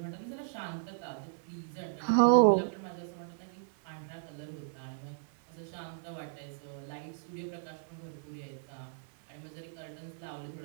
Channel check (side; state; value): left; silent; 54 dB below the other